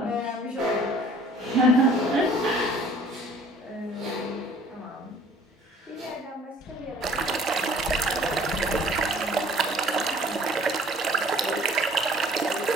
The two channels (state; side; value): normal; both; correlation 0.53